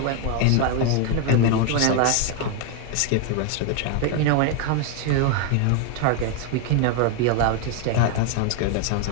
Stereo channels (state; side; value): different; both; correlation 0.01